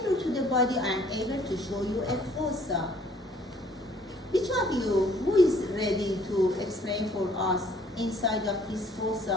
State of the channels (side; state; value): both; normal; correlation 0.59